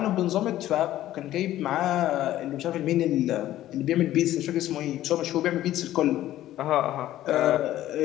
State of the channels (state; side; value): quieter; right; 13.8 dB